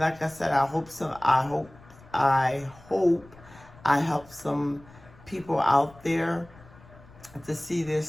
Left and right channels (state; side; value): noise; left; rumble, 23 dB below the sound